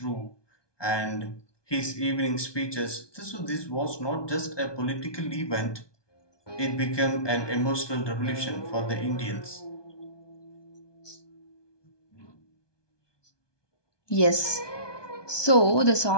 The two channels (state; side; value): late; right; 1.2 ms